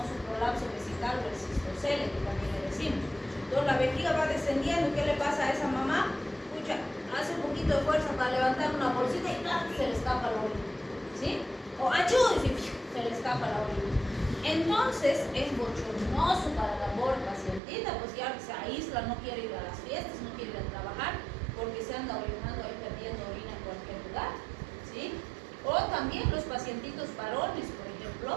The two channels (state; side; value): drops out; left; at 17.6 s